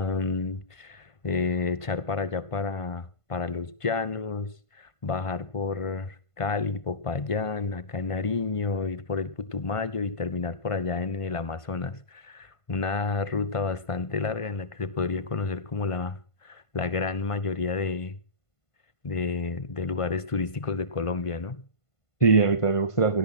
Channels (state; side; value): late; right; 1.5 ms